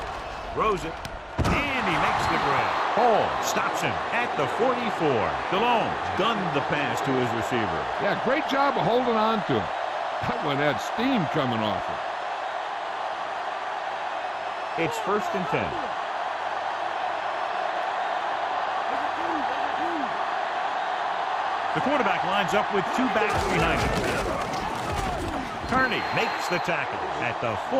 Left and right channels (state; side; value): identical; both; correlation 1.00